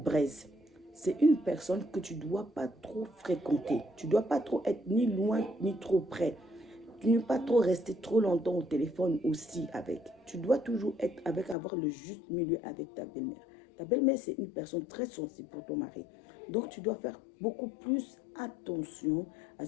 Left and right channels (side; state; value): right; drops out; at 11.6 s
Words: C'est une personne que tu ne dois pas trop fréquenter. Tu ne dois pas trop être ni loin ni trop près. Tu ne dois pas trop rester trop longtemps au téléphone aussi avec. Tu dois toujours être avec, avoir le juste milieu avec ta belle-mère. Ta belle-mère, c'est une personne très sensible pour ton mari. Donc, tu dois faire beaucoup plus attention à